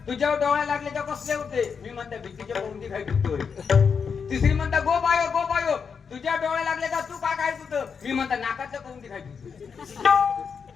तुझ्यावर डोळे लागले तर कसले होते. मी म्हणता भीतीच्या पौंडी खाईत होतोय. तिसरी म्हणता गो बायो तुझ्या डोळे लागले का तू का खाईत होतं. मी म्हणता नाकाचं पौंडी खाईत होतो.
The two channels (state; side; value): quieter; right; 6.1 dB